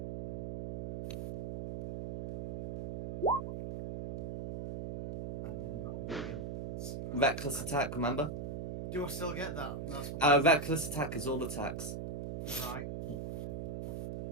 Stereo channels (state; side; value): noise; right; hum, 5 dB below the sound